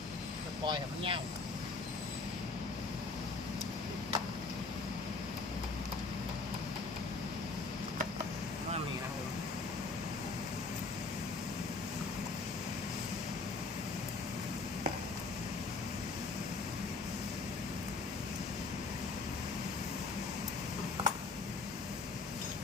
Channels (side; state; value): right; quieter; 3.9 dB